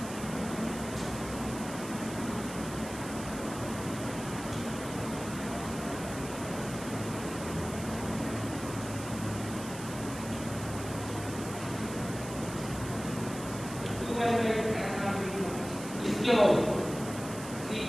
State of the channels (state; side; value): noise; right; hiss, 12 dB below the sound